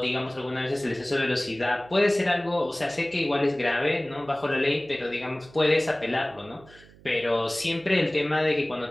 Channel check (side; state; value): right; noise; hum, 24 dB below the sound